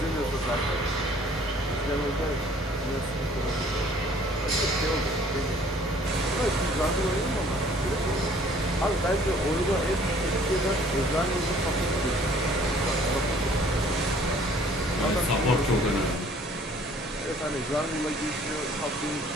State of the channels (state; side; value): normal; both; correlation 0.56